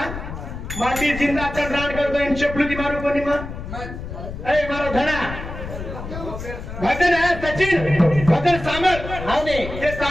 माटी जिंदा चल रांड कर तो इन चपलुदी मारो कोनी मा ए मारो धना भजन है सचिन भजन सामल हां ने ये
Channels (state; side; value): noise; left; rumble, 9 dB below the sound